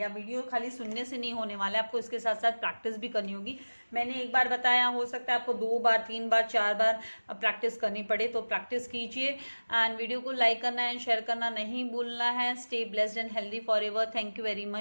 वीडियो खाली सुनने से नहीं होने वाला है, आपको इसके साथ साथ प्रैक्टिस भी करनी होगी. मैंने एक बार बताया, हो सकता है आपको 2 बार 3 बार 4 बार प्रैक्टिस करनी पड़े, तो प्रैक्टिस कीजिए. एंड वीडियो को लाइक करना एंड शेयर करना नहीं भूलना है. Stay blessed and healthy forever. Thank you very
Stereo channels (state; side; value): inverted; both; correlation -1.00